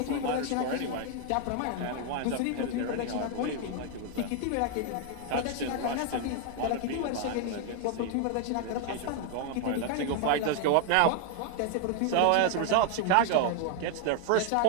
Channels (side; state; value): both; different; correlation 0.00